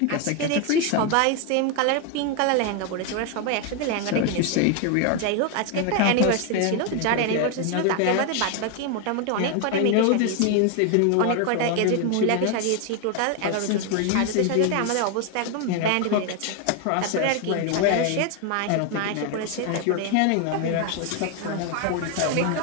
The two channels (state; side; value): different; both; correlation 0.01